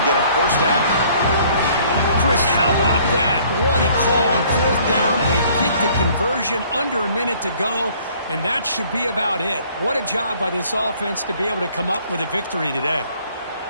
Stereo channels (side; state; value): both; inverted; correlation -0.58